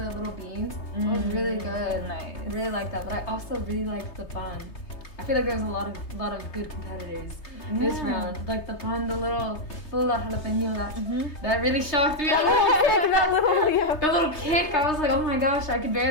little beans. It was really good. Nice. I really like that, but I also really liked the pan. I feel like there's a lot of good competitors this round. Like the pan, the little jalapeno, that really shocked me. The little kick, I was like, oh my gosh, I could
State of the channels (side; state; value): right; late; 3.3 ms